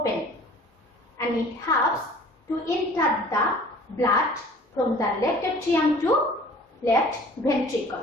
and it helps to enter the blood from the left atrium to left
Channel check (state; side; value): normal; both; correlation 0.49